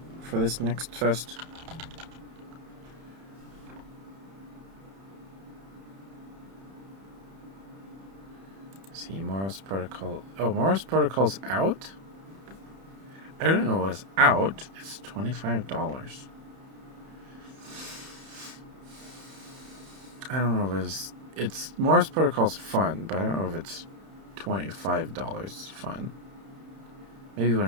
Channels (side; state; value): left; late; 31 ms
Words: for this next fest? Let's see, Moros Protocol. Oh, Moros Protocol's out? I didn't know it was out. It's $25. I don't know if it's Morse Protocol's fun, but I don't know if it's $25 fun. Maybe